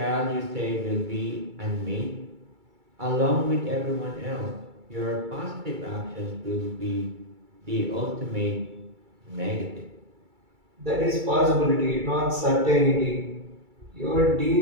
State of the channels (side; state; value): left; late; 2.3 ms